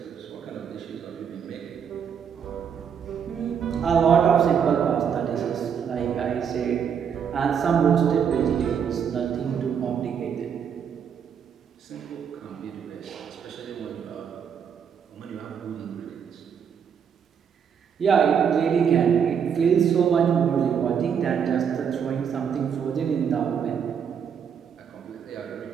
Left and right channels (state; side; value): quieter; left; 7.5 dB